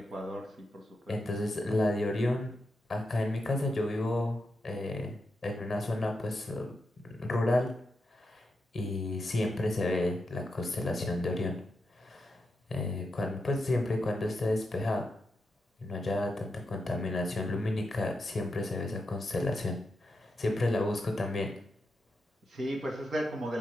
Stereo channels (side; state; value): both; normal; correlation 0.86